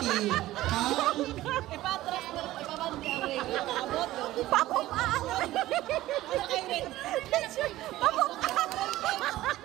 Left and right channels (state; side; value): quieter; left; 15.9 dB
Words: Ipatras mo. Ipabandi ang regla. Abot. Papukaan! Papukaan!